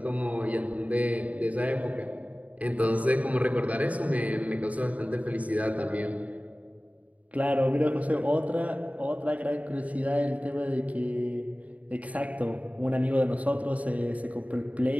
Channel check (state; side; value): late; left; 0.069 ms